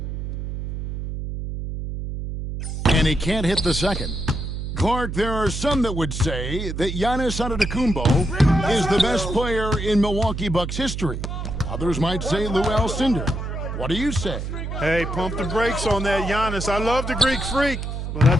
And he can't hit the second. Clark, there are some that would say that Giannis Antetokounmpo is the best player in Milwaukee Bucks history. Others might say Lou Alcindor. What do you say? Hey, pump the brakes on that Giannis. I love the Greek Freak, but I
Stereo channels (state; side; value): noise; right; hum, 5 dB below the sound